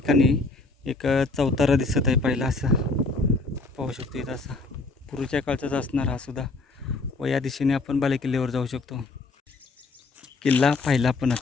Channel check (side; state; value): right; quieter; 3.4 dB